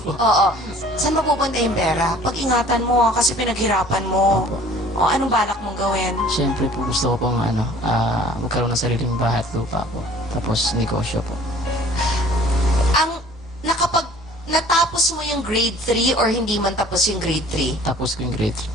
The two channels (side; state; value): both; normal; correlation 0.51